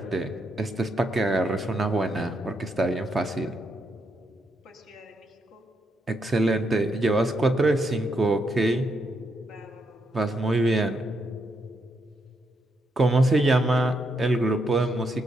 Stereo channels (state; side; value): normal; both; correlation 0.79